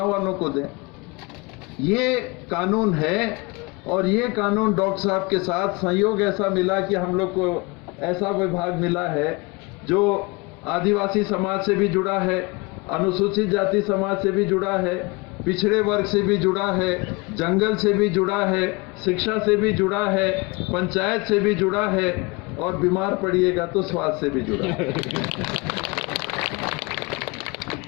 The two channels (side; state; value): right; quieter; 26.4 dB